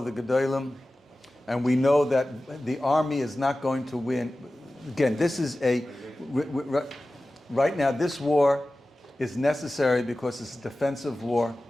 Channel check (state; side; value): normal; both; correlation 0.96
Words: the Gedolim, and we know that the army is not going to win. again, this is right now, this war is necessary because it's a defensive war.